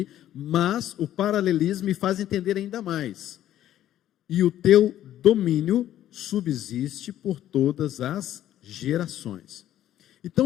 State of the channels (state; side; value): quieter; right; 12.2 dB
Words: mas o paralelismo me faz entender ainda mais. E o teu domínio subsiste por todas as gerações.